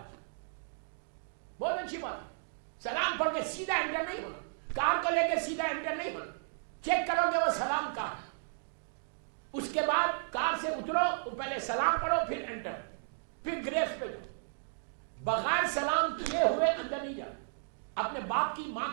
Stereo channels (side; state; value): left; silent; digital silence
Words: بہت اچھی بات ہے. سلام پڑھ کے سیدھا انٹر نہیں ہونا, کار کو لے کے سیدھا انٹر نہیں ہونا, چیک کرو کہ وہ سلام کہاں ہے. اس کے بعد کار سے اترو, پہلے سلام پڑھو پھر انٹر, پھر گریف پہ جاؤ. بغیر سلام کیے ہوئے اندر نہیں جانا. اپنے باپ کی, ماں